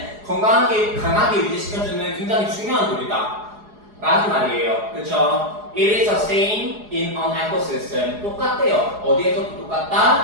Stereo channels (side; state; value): left; late; 4.8 ms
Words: 건강하게 강하게 유지시켜주는 굉장히 중요한 돌이다 라는 말이에요. 그쵸? It is the same in an ecosystem. 똑같대요. 어디에서도